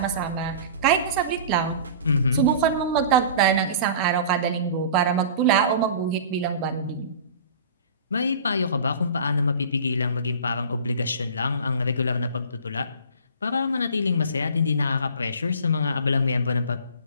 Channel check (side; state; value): both; inverted; correlation -0.40